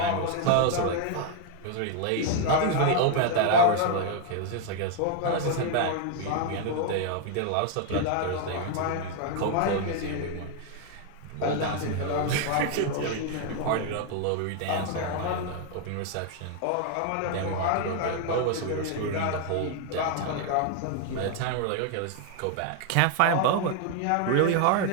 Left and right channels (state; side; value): different; both; correlation 0.00